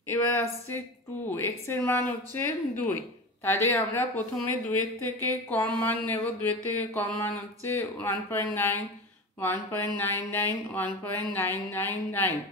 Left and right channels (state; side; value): normal; both; correlation 0.29